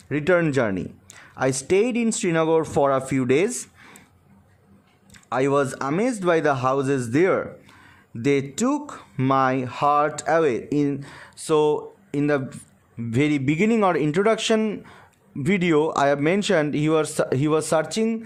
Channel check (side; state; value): both; identical; correlation 1.00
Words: return journey. I stayed in Srinagar for a few days. I was amazed by the houses there. they took my heart away. In the very beginning or introduction video, I have mentioned he was